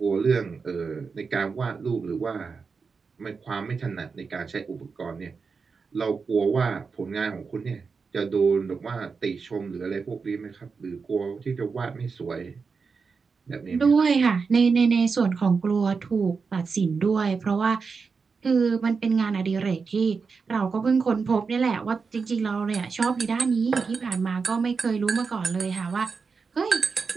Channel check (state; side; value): quieter; left; 5.1 dB